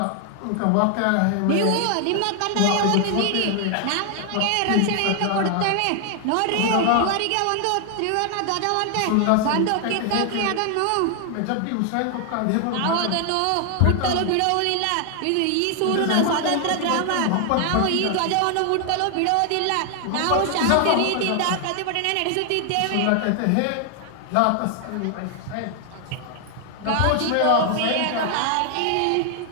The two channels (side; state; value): both; different; correlation 0.00